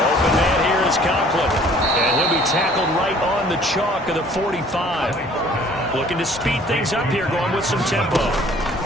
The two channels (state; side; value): normal; both; correlation 0.54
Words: man here is Conklin. And he'll be tackled right on the chalk of the 45. Looking to speed things up here, going with some tempo.